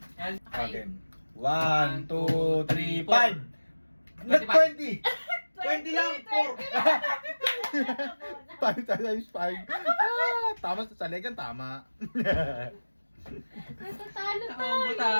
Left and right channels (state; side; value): inverted; both; correlation -1.00